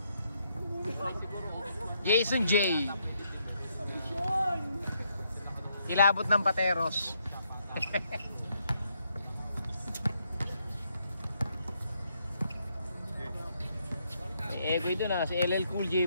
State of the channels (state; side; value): inverted; both; correlation -0.75